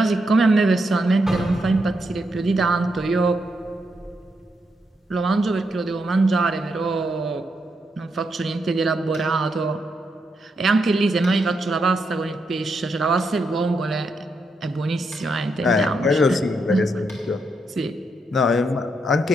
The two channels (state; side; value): normal; both; correlation 0.81